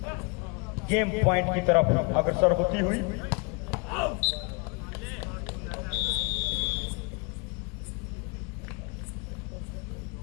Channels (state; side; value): quieter; right; 30.8 dB